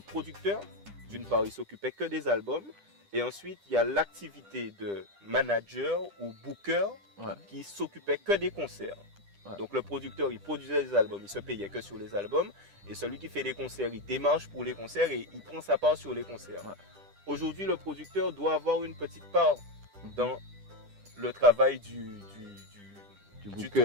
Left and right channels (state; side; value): late; left; 10 ms